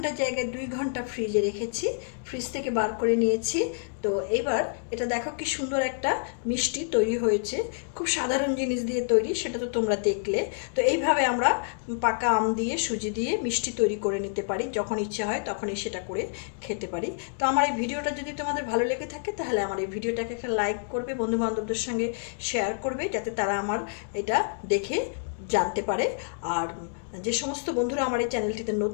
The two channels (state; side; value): silent; right; digital silence